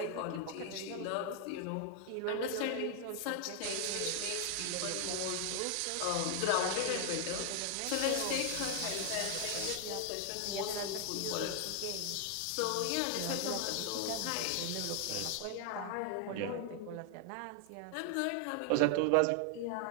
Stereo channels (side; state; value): both; different; correlation 0.00